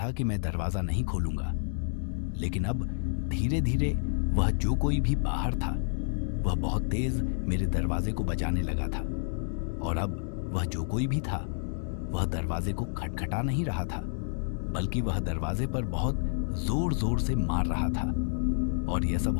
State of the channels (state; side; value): silent; right; 58 dB below the other